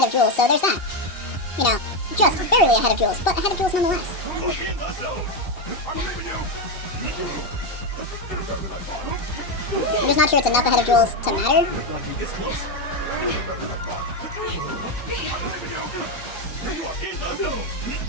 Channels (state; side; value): late; right; 2.7 ms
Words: of Jules, so there's that. You know, just barely ahead of Jules, but ahead of Jules nonetheless. I'm just not sure it's enough ahead of Jules to matter.